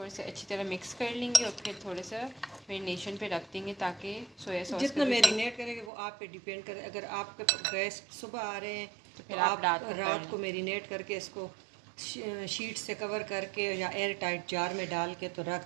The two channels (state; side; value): drops out; left; at 5.9 s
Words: से अच्छी तरह मिक्स कर लेंगे और फिर थोड़ा सा मैरिनेशन पे रख देंगे, ताकि सोया सॉस जितना मैरिनेट करेंगे वो आप पे डिपेंड करे। अगर आपके गेस्ट सुबह आ रहे हैं तो फिर आप रात को मैरिनेट करके इसको शीट से कवर करके या एयर टाइट जार में डाल के तो